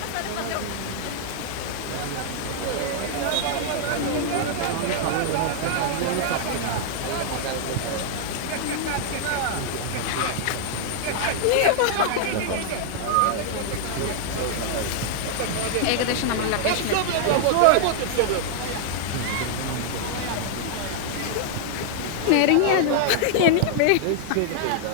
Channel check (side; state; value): both; different; correlation -0.01